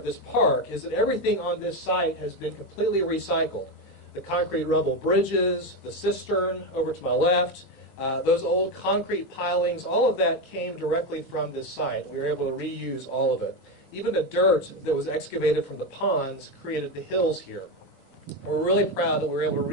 this park is that everything on this site has been completely recycled. The concrete rubble bridges, the cistern over to my left, those old concrete pilings, all of that came directly from this site. We were able to reuse all of it. Even the dirt that was excavated from the ponds created the hills here. We're really proud that we were able to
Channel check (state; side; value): normal; both; correlation 0.12